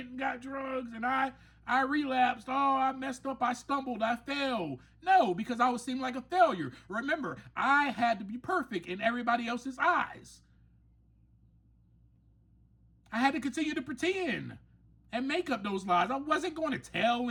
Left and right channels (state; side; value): identical; both; correlation 1.00